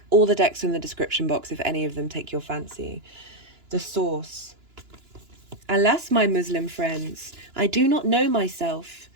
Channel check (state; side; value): late; left; 2.9 ms